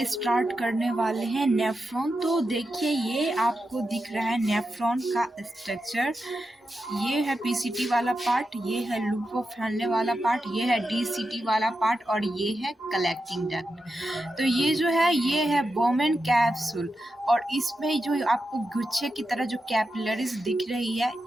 स्टार्ट करने वाले हैं नेफ्रॉन। तो देखिए, ये आपको दिख रहा है नेफ्रॉन का स्ट्रक्चर। ये है पीसीटी वाला पार्ट, ये है लूप ऑफ फैलने वाला पार्ट, ये है डीसीटी वाला पार्ट और ये है कलेक्टिंग डक्ट। तो ये जो है ये है बोमेन कैप्सूल, और इसमें जो आपको गुच्छे की तरह जो कैपिलरीज दिख रही है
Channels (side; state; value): both; normal; correlation 0.88